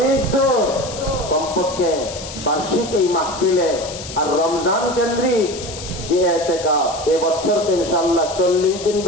দূর, কমপক্ষে বার্ষিক এই মাহফিলে আর রমজান কেন্দ্রিক যে এতেকাফ এবছর তো ইনশাআল্লাহ 40 দিন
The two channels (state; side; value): noise; left; hiss, 11 dB below the sound